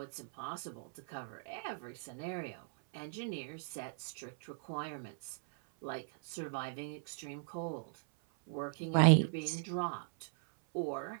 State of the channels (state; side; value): silent; left; 52 dB below the other